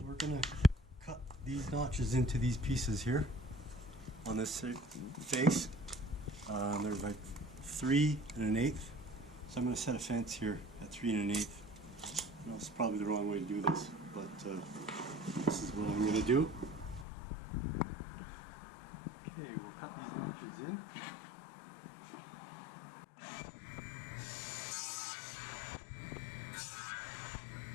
gonna cut these notches into these pieces here on this face. They're like 3 1/8. So I'm gonna set a fence here at 3 1/8. I know it's probably the wrong way to do this, but this is what I'm gonna do. Okay, we'll cut these notches in.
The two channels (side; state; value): right; drops out; at 17.1 s